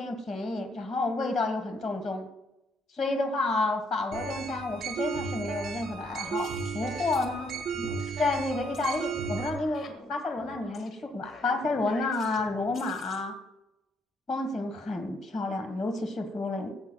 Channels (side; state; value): both; normal; correlation 0.71